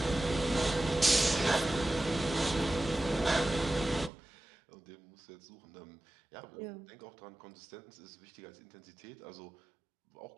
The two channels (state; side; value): drops out; left; at 4.1 s